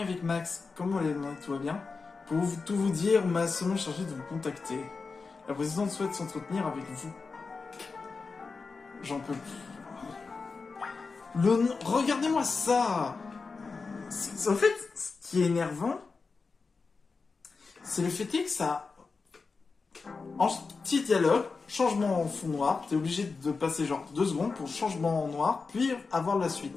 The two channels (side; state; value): right; quieter; 4.5 dB